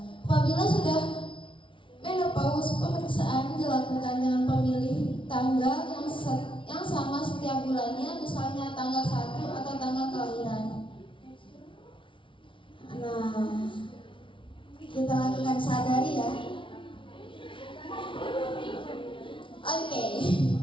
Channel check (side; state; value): right; late; 0.25 ms